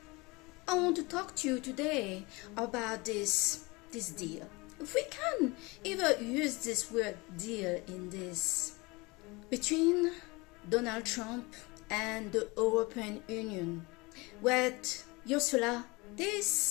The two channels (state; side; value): quieter; right; 24.9 dB